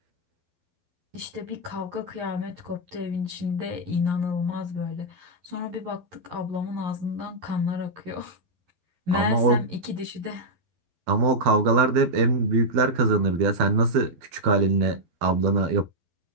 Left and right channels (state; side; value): late; left; 11 ms